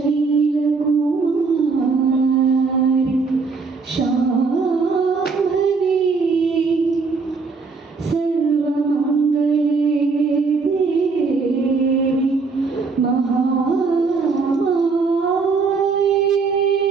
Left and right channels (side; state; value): left; quieter; 4.6 dB